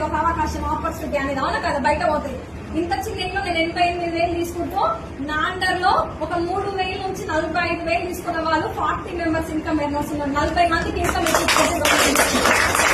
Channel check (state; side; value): identical; both; correlation 1.00